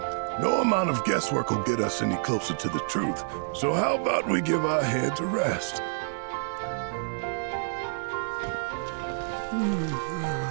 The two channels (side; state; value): left; silent; 59 dB below the other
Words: No amount of guesswork will get us any closer to the truth. So how about we give our heads a rest?